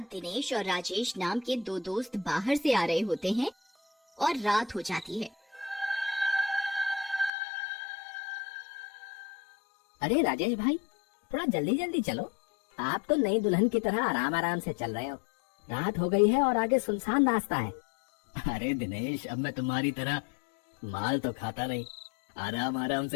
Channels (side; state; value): right; drops out; at 7.3 s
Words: दिनेश और राजेश नाम के दो दोस्त बाहर से आ रहे होते हैं और रात हो जाती है। अरे राजेश भाई, थोड़ा जल्दी जल्दी चलो। आप तो नई दुल्हन की तरह आराम आराम से चल रहे हो। रात हो गई है और आगे सुनसान रास्ता है। अरे दिनेश, अब मैं तुम्हारी तरह माल तो खाता नहीं, आराम आराम